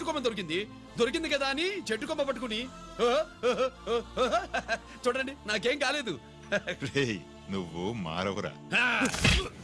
కొమ్మ దొరికింది కదా అని చెట్టు కొమ్మ పట్టుకుని చూడండి నాకేం కాలేదు. రేయ్, నువ్వు మారవురా.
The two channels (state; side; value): identical; both; correlation 1.00